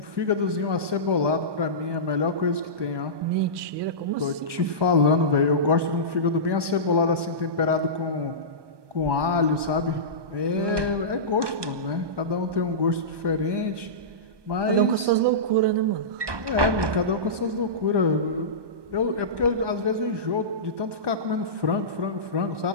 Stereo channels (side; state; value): left; late; 1.2 ms